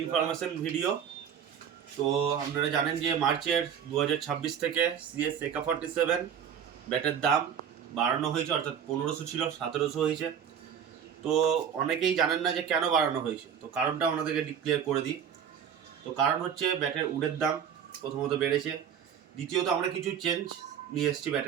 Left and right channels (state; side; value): quieter; left; 8.2 dB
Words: ইনফরমেশন ভিডিও। তো আপনারা জানেন যে মার্চের 2026 থেকে সিএস AK-47 ব্যাটের দাম বাড়ানো হয়েছে, অর্থাৎ 1500 ছিল 1700 হয়েছে। তো অনেকেই জানেন না যে কেন বাড়ানো হয়েছে, তো কারণটা আপনাদেরকে ডিক্লেয়ার করে দিই। তো কারণ হচ্ছে ব্যাটের উডের দাম প্রথমত বেড়েছে, দ্বিতীয়ত আমরা কিছু চেঞ্জ নিয়ে এসেছি